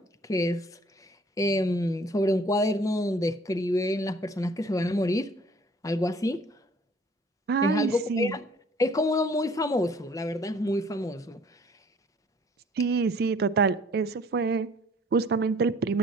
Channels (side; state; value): both; normal; correlation 0.56